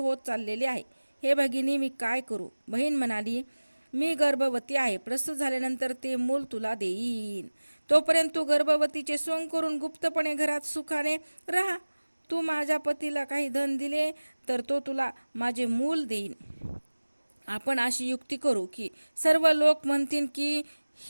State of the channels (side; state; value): both; inverted; correlation -1.00